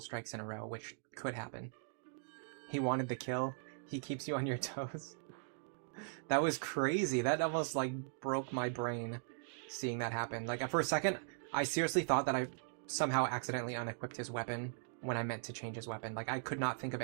in a row, which could happen. He wanted the kill. He keeps you on your toes. That was crazy. That almost like broke my brain seeing that happen. Like for a second, I seriously thought that I somehow accidentally unequipped his weapon when I meant to change his weapon. Like I could not think of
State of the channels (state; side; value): silent; left; digital silence